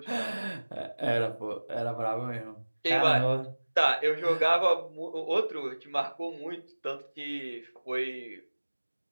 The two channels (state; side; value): inverted; both; correlation -1.00